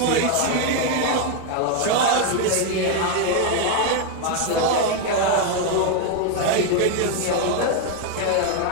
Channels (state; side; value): different; both; correlation 0.01